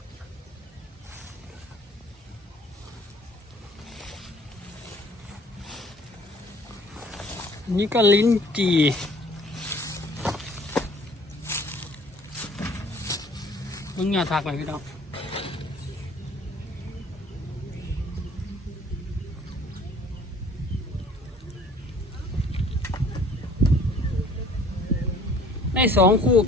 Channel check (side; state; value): both; normal; correlation 0.54